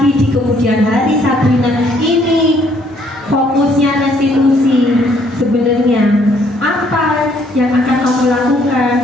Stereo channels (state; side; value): normal; both; correlation 0.66